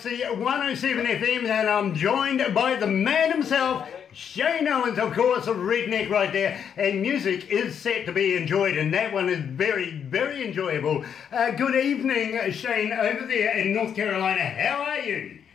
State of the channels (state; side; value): quieter; right; 8.0 dB